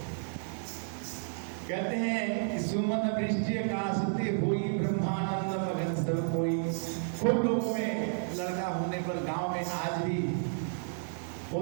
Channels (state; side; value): silent; left; 57 dB below the other